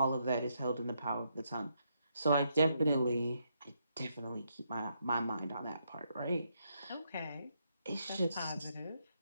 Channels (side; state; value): both; inverted; correlation -0.77